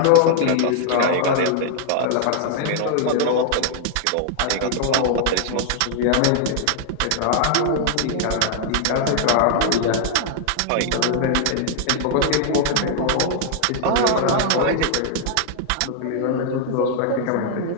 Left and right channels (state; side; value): different; both; correlation -0.01